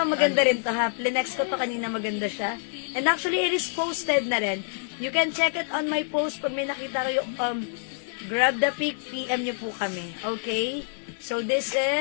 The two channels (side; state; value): right; silent; digital silence